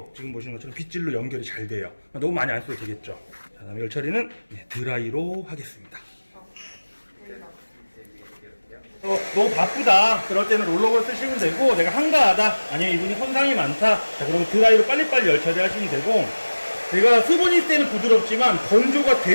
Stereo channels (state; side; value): inverted; both; correlation -1.00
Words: 지금 보시는 것처럼 빗질로 연결이 잘 돼요. 너무 많이 안 써도 되겠죠. 자, 다음에 열처리는 드라이로 하겠습니다. 너무 바쁘다. 그럴 때는 롤러볼 쓰시면 되고, 내가 한가하다, 아니면 이분이 손상이 많다, 자, 그러면 드라이로 빨리빨리 열처리 하시면 되고, 제가 수분이 있을 때는 부드럽지만 건조가